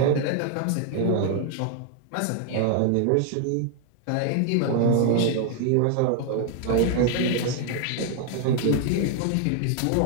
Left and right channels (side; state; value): both; different; correlation 0.00